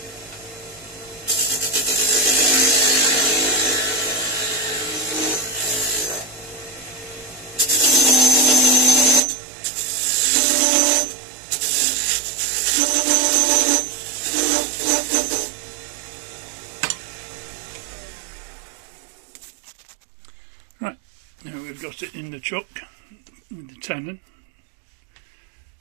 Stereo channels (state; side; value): drops out; left; at 9.2 s